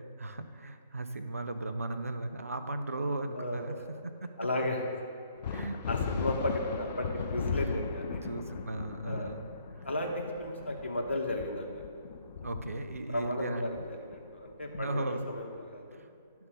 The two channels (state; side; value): inverted; both; correlation -0.69